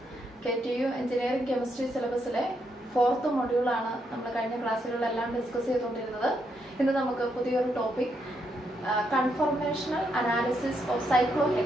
KTU engineering chemistry സിലബസിലെ 4th മൊഡ്യൂളാണ് നമ്മൾ കഴിഞ്ഞ ക്ലാസ്സുകളിലെല്ലാം ഡിസ്കസ് ചെയ്തുകൊണ്ടിരുന്നത്. ഇന്ന് നമുക്ക് പുതിയൊരു topic, conformational analysis of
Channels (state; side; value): normal; both; correlation 0.78